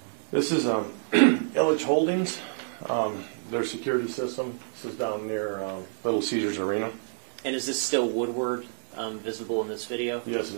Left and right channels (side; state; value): left; silent; 59 dB below the other